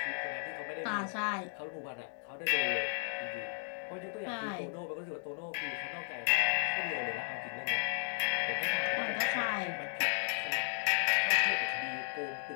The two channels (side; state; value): right; silent; digital silence